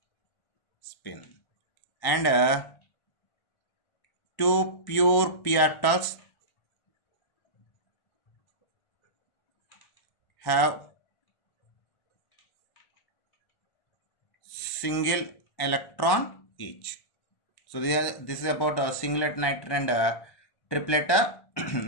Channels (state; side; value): late; right; 1.1 ms